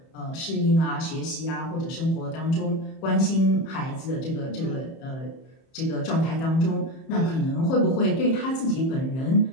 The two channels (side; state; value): right; late; 31 ms